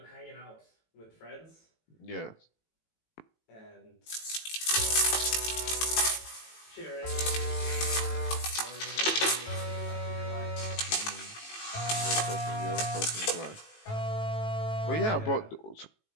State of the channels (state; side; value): late; right; 18 ms